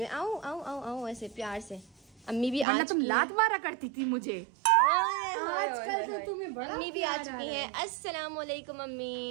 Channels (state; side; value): drops out; left; at 2.7 s